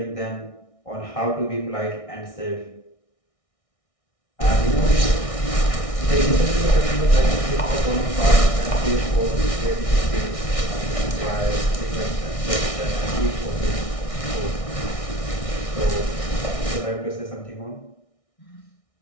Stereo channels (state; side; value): late; right; 1.6 ms